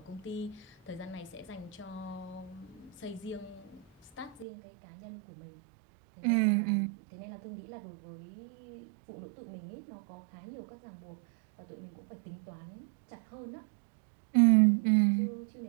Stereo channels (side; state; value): left; drops out; at 4.5 s